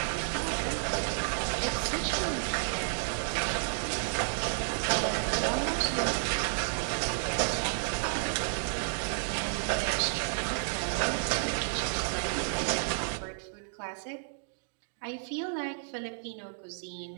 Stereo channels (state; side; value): silent; left; digital silence